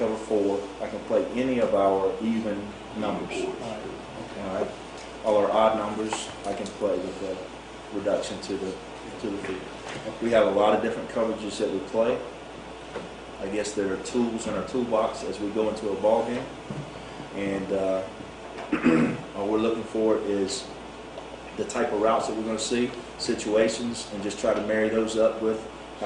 4. I can play any of our even numbers. All right. Okay. All right. All our odd numbers, I can play with the reduction to the field. We have a lot of different coverages that we play. I guess there are tools in our toolbox as we go into a ball game. And all we're looking for is the type of routes that we're going to see, situations, and just try to marry those up with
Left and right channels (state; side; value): identical; both; correlation 1.00